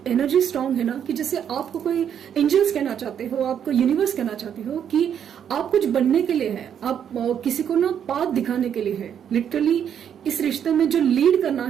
एनर्जी स्ट्रांग है ना कि जैसे आपको कोई एंजल्स कहना चाहते हो, आपको यूनिवर्स कहना चाहते हो कि आप कुछ बनने के लिए है, आप किसी को ना पाथ दिखाने के लिए है। लिटरली इस रिश्ते में जो लीड करना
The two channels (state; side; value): quieter; left; 8.8 dB